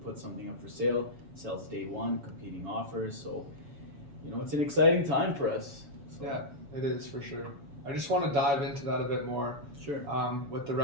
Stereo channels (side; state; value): left; late; 7.0 ms